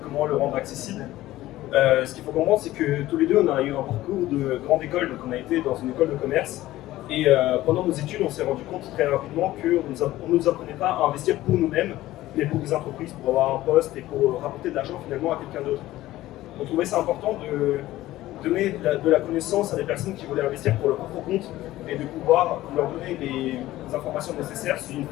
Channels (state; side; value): quieter; right; 15.9 dB